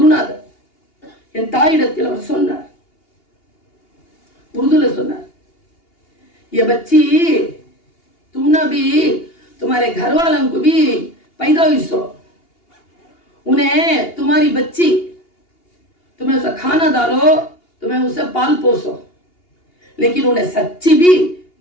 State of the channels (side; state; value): right; late; 2.8 ms